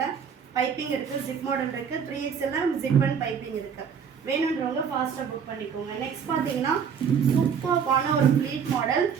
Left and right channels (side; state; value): left; quieter; 7.0 dB